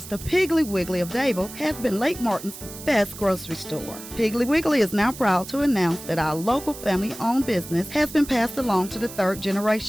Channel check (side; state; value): right; noise; hiss, 14 dB below the sound